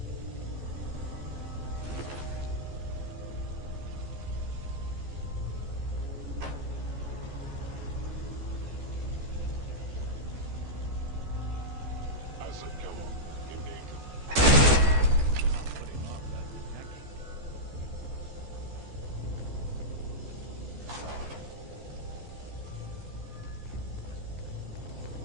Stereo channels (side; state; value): left; late; 14 ms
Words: Asset killer in danger. Put him off that